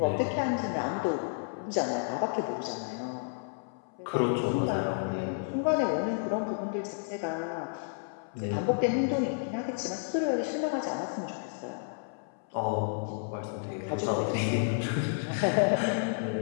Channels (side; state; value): right; silent; 57 dB below the other